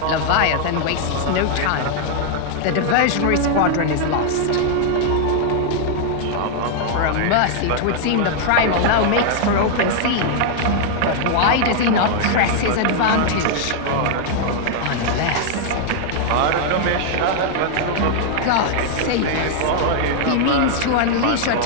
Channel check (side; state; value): both; different; correlation 0.00